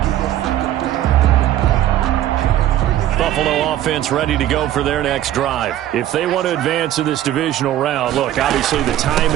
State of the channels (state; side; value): quieter; left; 12.6 dB